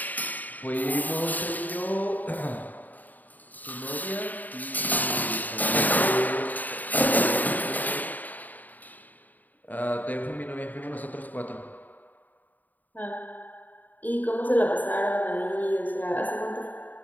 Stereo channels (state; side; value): late; right; 0.083 ms